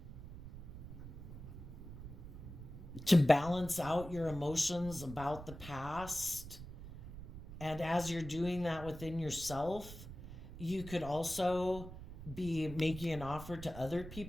to balance out your emotions about the past. And as you're doing that within yourself, you could also be making an offer to other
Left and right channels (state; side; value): noise; right; rumble, 12 dB below the sound